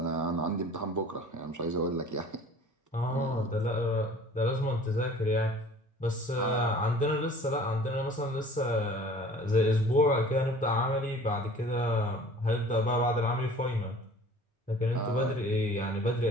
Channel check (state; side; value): normal; both; correlation 0.47